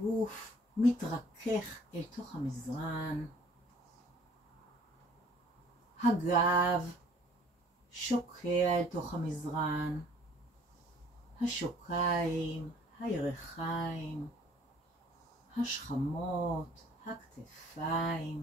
מתרכך אל תוך המזרן, הגב שוקע אל תוך המזרן, השוקיים, הירכיים, השכמות,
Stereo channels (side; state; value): both; normal; correlation 0.55